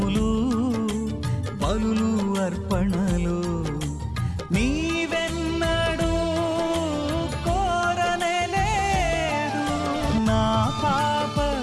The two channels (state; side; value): identical; both; correlation 1.00